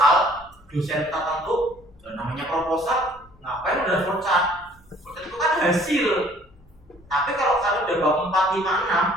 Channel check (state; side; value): noise; left; hum, 29 dB below the sound